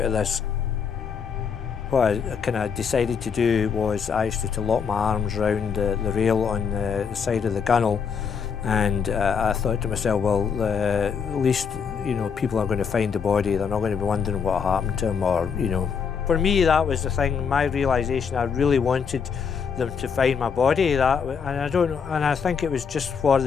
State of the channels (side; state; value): right; quieter; 6.4 dB